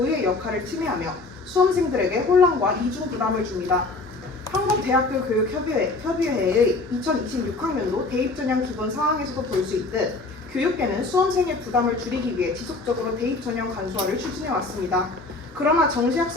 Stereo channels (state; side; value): quieter; right; 3.4 dB